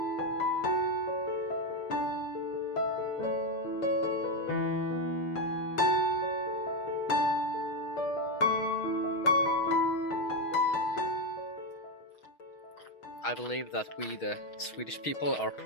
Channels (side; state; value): right; late; 6.3 ms